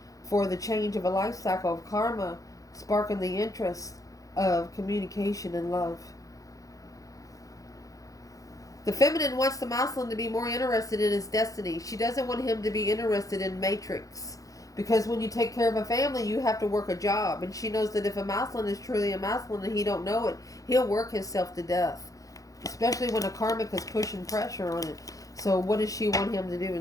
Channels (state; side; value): late; right; 0.17 ms